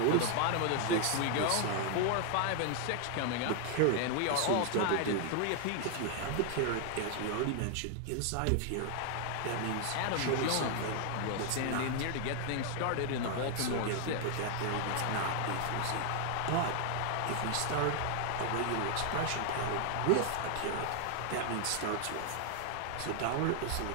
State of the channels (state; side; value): different; both; correlation 0.00